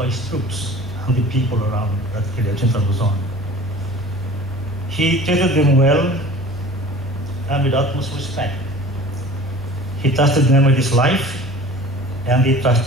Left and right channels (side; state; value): both; normal; correlation 0.43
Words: his troops and the people around that area, Central Luzon. He treated them well and with utmost respect. He trusted them with his life, and they